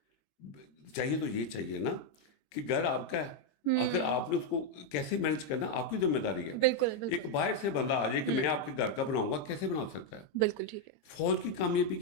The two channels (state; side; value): late; right; 20 ms